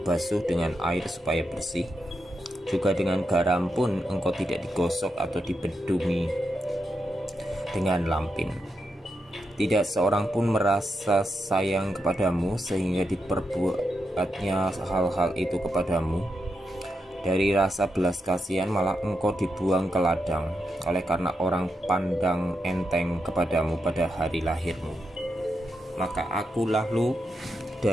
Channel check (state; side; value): normal; both; correlation 0.85